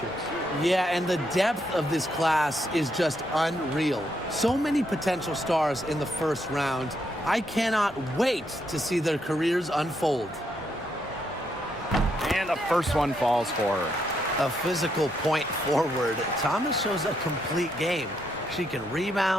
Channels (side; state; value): both; normal; correlation 0.77